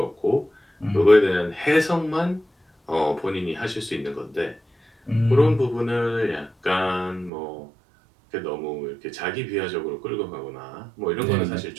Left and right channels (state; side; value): drops out; left; at 7.3 s